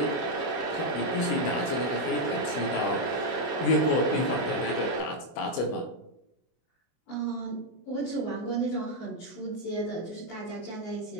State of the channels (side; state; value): right; late; 24 ms